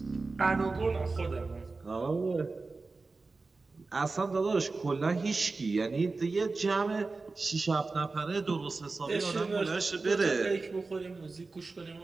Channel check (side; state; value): left; quieter; 3.8 dB